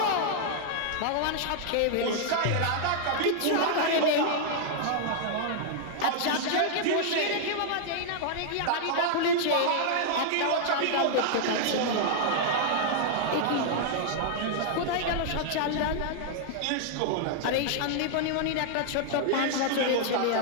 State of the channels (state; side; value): different; both; correlation -0.01